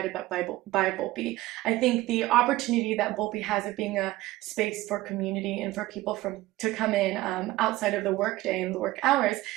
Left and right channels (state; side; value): quieter; left; 17.6 dB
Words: by Volpe? I think the opportunity that Volpe has of being a space for community and for people to come in outside of the workday and the work hours